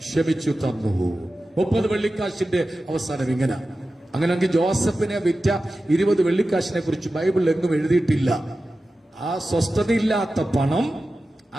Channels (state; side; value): normal; both; correlation 0.94